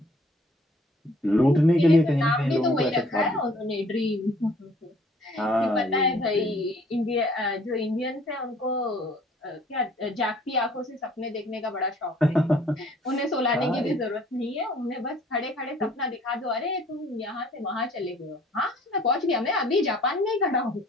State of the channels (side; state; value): both; normal; correlation 0.57